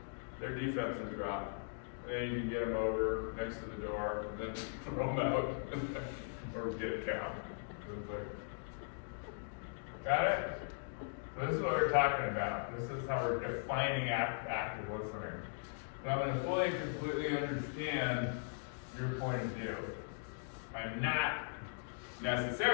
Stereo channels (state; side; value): silent; right; digital silence